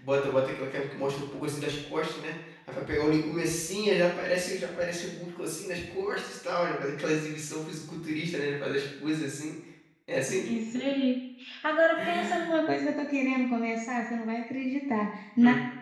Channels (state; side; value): identical; both; correlation 1.00